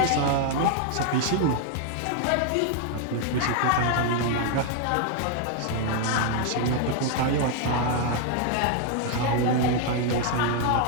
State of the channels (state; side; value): different; both; correlation 0.00